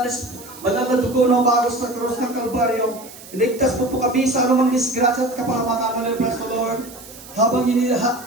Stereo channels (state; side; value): noise; right; hiss, 18 dB below the sound